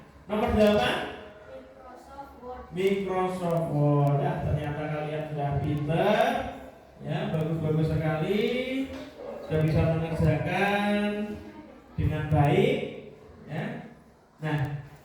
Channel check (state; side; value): identical; both; correlation 1.00